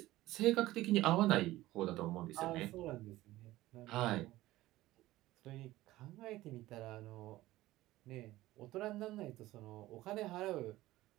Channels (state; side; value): quieter; left; 16.8 dB